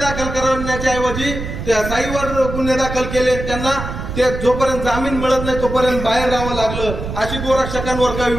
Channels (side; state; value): right; noise; rumble, 7 dB below the sound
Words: दाखल करण्याच्या ऐवजी त्या साईवर गुन्हे दाखल केले. त्यांना ते जोपर्यंत जामीन मिळत नाही तोपर्यंत बाहेर राहावं लागलं. अशी गोरक्षकांवर काही